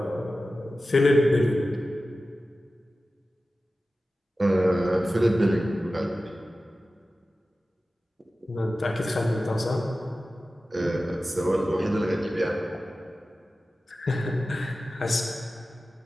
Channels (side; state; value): both; normal; correlation 0.95